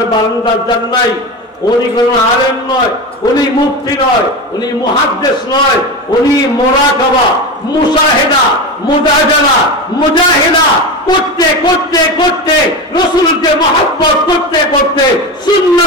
বারান্দার যান নাই, উনি কোন আলেম নয়, উনি মুফতি নয়, উনি মুহাদ্দিস নয়, উনি মুরাকাবা, মুশাহিদা, মুজাদালা, মুজাহিদা করতে করতে করতে, রাসূলকে মহব্বত করতে করতে,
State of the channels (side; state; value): both; normal; correlation 0.22